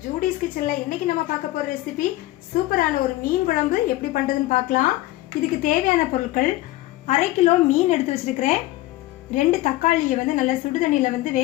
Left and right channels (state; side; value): quieter; right; 17.2 dB